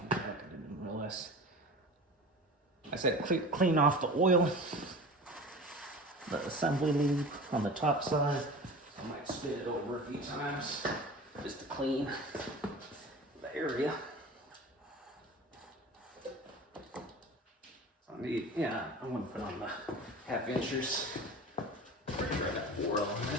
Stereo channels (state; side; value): normal; both; correlation 0.36